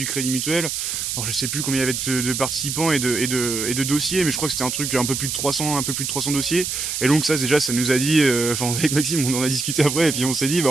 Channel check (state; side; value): noise; right; hiss, 3 dB below the sound